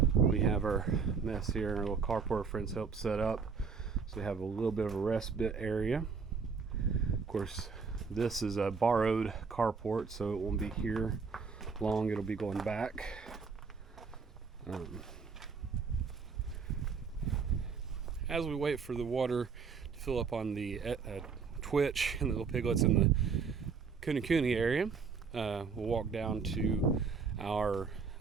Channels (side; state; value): left; quieter; 5.4 dB